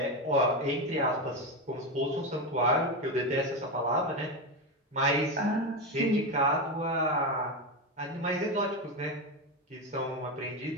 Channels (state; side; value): normal; both; correlation 0.14